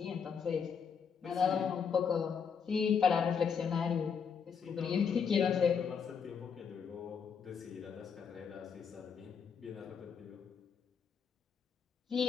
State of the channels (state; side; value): quieter; right; 6.6 dB